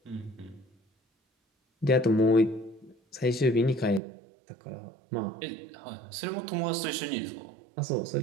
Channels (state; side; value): drops out; left; at 4.0 s